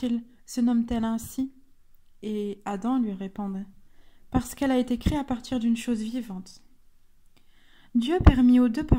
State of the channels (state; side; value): identical; both; correlation 1.00